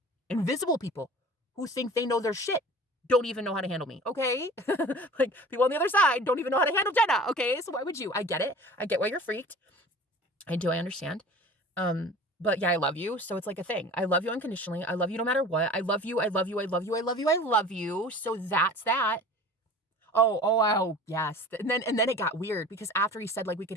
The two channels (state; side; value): normal; both; correlation 0.41